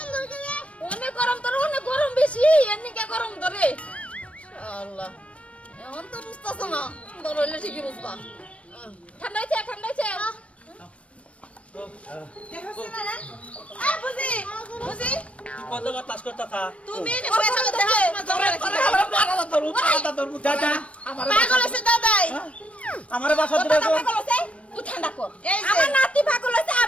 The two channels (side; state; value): right; late; 0.063 ms